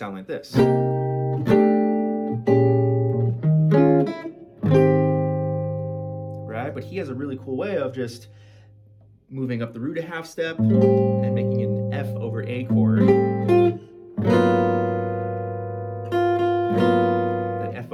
like this. Right? But he has a really cool way of just moving up the root a half step and making an F over A chord. That F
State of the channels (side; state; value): both; identical; correlation 1.00